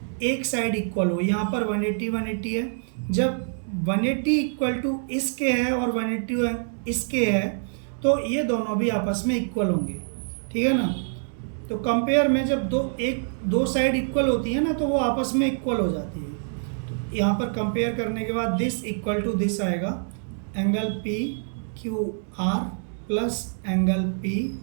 एक साइड इक्वल हो। यहाँ पर 180 है, जब 180 इक्वल टू इसके है और 180 इसके है तो ये दोनों भी आपस में इक्वल होंगे, ठीक है ना। तो कंपेयर में जब दो साइड इक्वल होती है ना तो वो आपस में इक्वल हो जाती है। तो यहाँ पर कंपेयर करने के बाद दिस इक्वल टू दिस आएगा, angle P Q R plus angle P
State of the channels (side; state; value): left; silent; digital silence